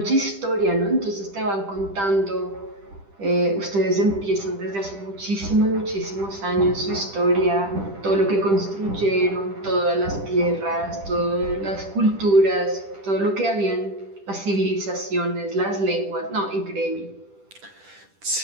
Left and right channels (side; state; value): left; late; 10 ms